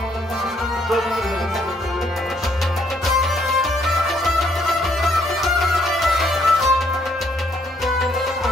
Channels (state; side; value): normal; both; correlation 0.68